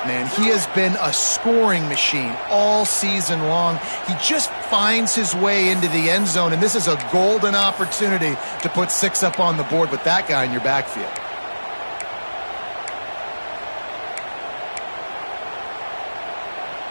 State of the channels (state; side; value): inverted; both; correlation -1.00